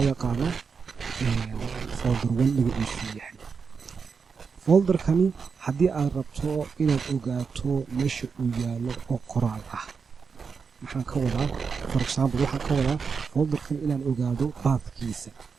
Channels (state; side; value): quieter; left; 5.6 dB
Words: yaqaano folder 1 magaciisu yahay. folderkani haddii aad rabto inaad ogaato meesha uu yaalo oo qoraal ah maxaan ka wadaa? for example waxaan ka wadaa folderkan inaan ogaado pathkiisa.